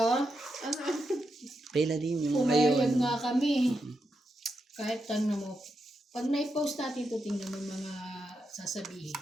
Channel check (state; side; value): normal; both; correlation 0.85